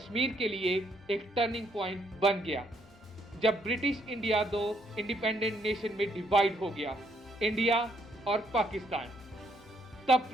के लिए एक टर्निंग पॉइंट बन गया, जब ब्रिटिश इंडिया 2 इंडिपेंडेंट नेशन में डिवाइड हो गया, इंडिया और पाकिस्तान। तब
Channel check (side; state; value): both; normal; correlation 0.71